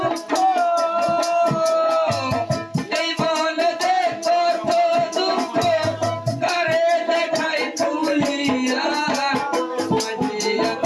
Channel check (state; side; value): identical; both; correlation 1.00